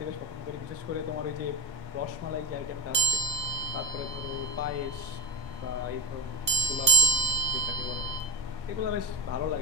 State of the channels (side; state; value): left; late; 1.5 ms